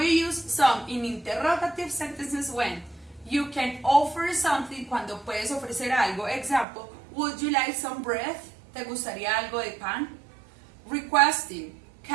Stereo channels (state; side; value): drops out; left; at 6.7 s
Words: use some in interrogative sentences when you can offer something, cuando puedes ofrecer algo. Example, would you like some bread? ¿Te gustaría algo de pan? Requesting,